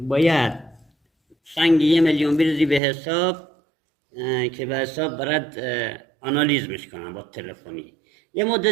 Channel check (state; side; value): drops out; left; at 2.8 s